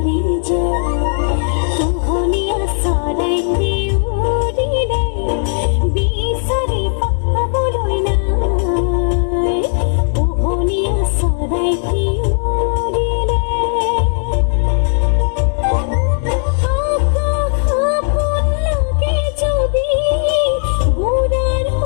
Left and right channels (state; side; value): silent; right; digital silence